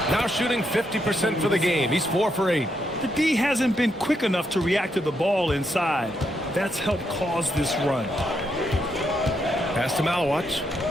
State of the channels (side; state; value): both; normal; correlation 0.79